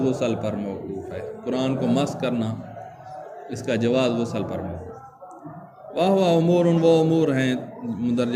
غسل پر موقوف ہے، قرآن کو مس کرنا، اس کا جواز غسل پر موقوف۔ واہ امور، وہ امور ہیں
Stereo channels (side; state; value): both; identical; correlation 1.00